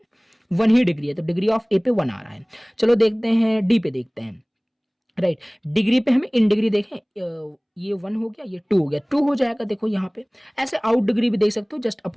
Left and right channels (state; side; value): identical; both; correlation 1.00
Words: ही डिग्री है, तो डिग्री ऑफ ए पे 1 आ रहा है। चलो देखते हैं डी पे, देखते हैं, राइट। डिग्री पे हमें इन डिग्री देखें, ये 1 हो गया, ये 2 हो गया, 2 हो जाएगा। देखो यहाँ पे ऐसे आउट डिग्री भी देख सकते हो, just